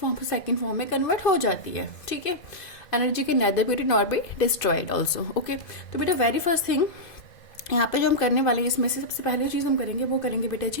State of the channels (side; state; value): right; late; 2.0 ms